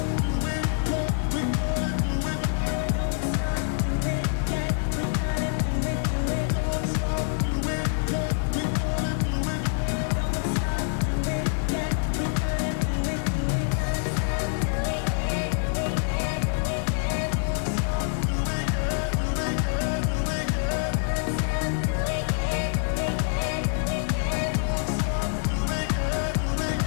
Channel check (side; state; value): right; silent; digital silence